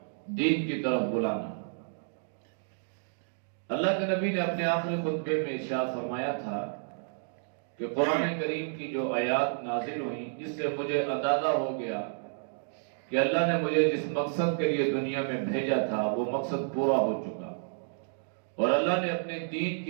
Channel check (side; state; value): left; silent; digital silence